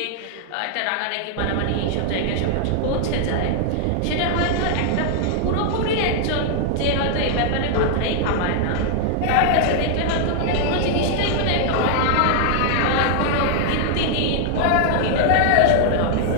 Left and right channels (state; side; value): different; both; correlation 0.00